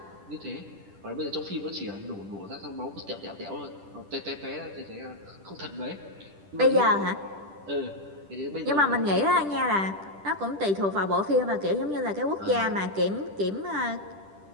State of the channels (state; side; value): late; left; 10 ms